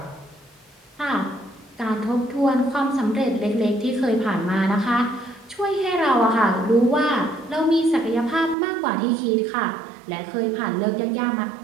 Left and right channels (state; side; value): drops out; left; at 8.6 s